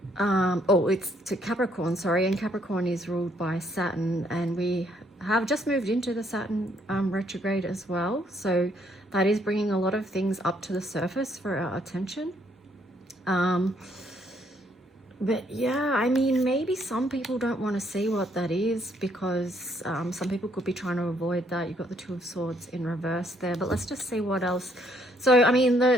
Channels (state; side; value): normal; both; correlation 0.69